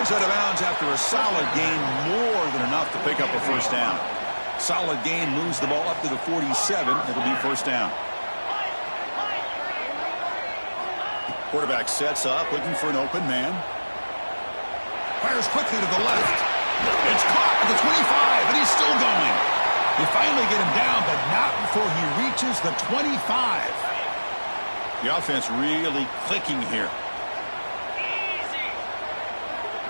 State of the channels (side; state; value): both; inverted; correlation -1.00